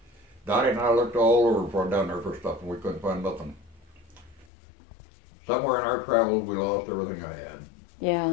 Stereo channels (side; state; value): right; drops out; at 4.5 s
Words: Dottie and I looked all over for down there for stuff, and we couldn't find nothing. Somewhere in our travels, we lost everything I had.